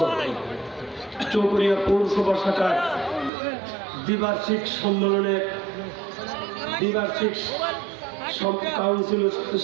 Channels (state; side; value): drops out; left; at 3.3 s